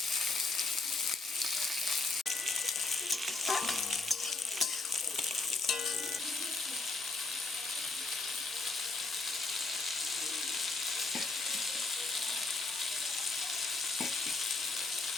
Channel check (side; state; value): right; quieter; 3.6 dB